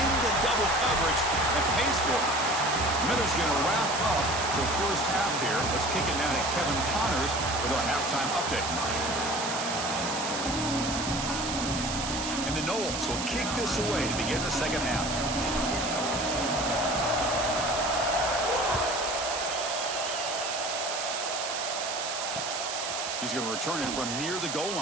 double coverage and pays for it. Miller's going to wrap up the first half here. Let's kick it now to Kevin Connors with our halftime update. And the Noles will kick this away to begin the second half. He's going to return it from near the goal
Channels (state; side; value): noise; right; hiss, 4 dB below the sound